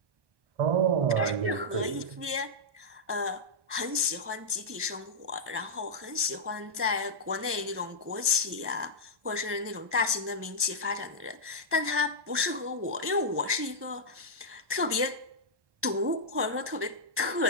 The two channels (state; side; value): late; left; 1.2 ms